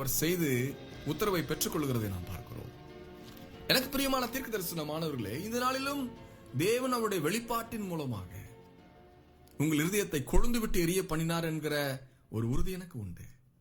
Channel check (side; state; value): both; identical; correlation 1.00